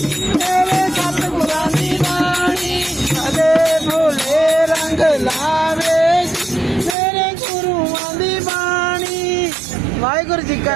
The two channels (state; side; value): drops out; left; at 7.0 s